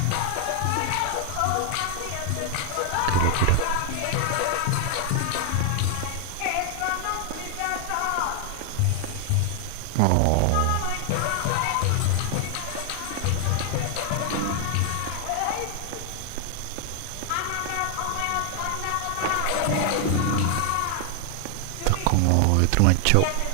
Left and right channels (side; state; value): both; different; correlation 0.00